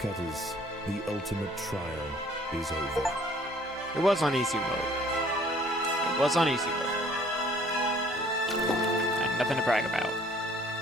the ultimate trial is over. It was on easy mode. It was on easy mode. And nothing to brag about.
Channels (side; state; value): both; normal; correlation 0.57